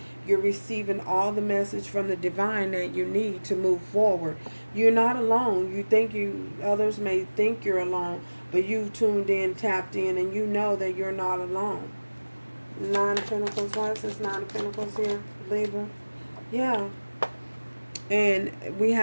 You're receiving all the message from the divine that you need to move forward. You're not alone. You think others may think you're alone, but you tuned in, tapped in, and you know that you're not alone. Nine of Pentacles. Why is this Nine of Pentacles here, Libra? Yeah. And we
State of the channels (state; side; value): inverted; both; correlation -1.00